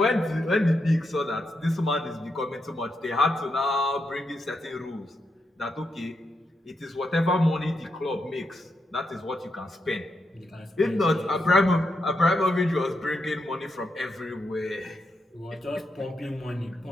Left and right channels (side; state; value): both; normal; correlation 0.83